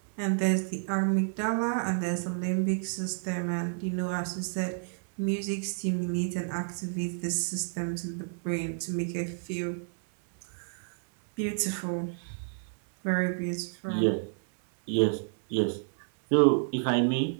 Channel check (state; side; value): silent; left; 58 dB below the other